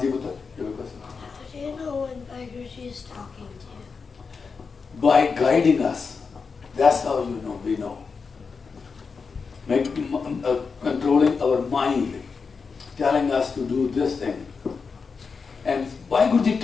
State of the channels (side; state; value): right; quieter; 5.1 dB